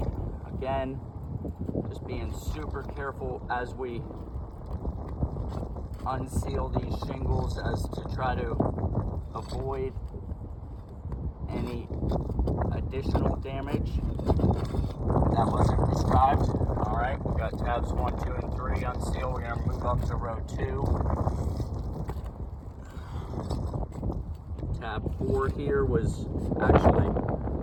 Again, just being super careful as we unseal these shingles as to try to avoid any additional damage that wasn't prescribed. All right, we got tabs 1, 2, and 3 unsealed. We're gonna move up to row 2. Tab 4 here was actually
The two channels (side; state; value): both; identical; correlation 1.00